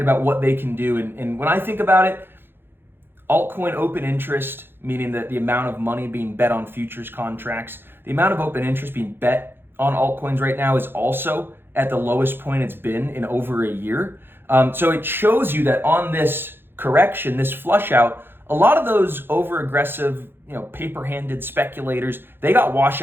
what they can do. And when I think about it, altcoin open interest, meaning that the amount of money being bet on futures contracts, the amount of open interest being bet on altcoins right now is also at the lowest point it's been in over a year. So it shows you that on this correction, this flush out, a lot of those over aggressive, paper-handed speculators, they got washed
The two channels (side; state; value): left; late; 0.10 ms